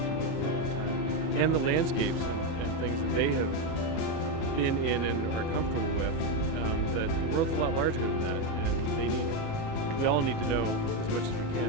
with for a long time, and the landscapes and things that they have been in and are comfortable with, that the world's a lot larger than that, and we all need to know as much as we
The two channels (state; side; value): late; right; 37 ms